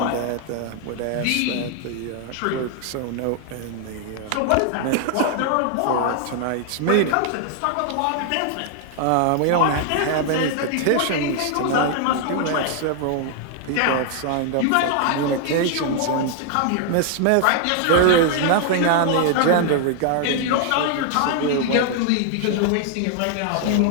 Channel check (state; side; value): different; both; correlation 0.00